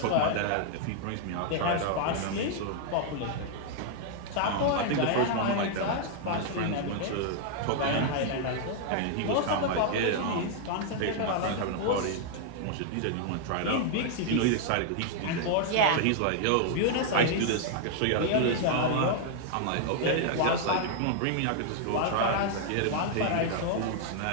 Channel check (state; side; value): different; both; correlation -0.01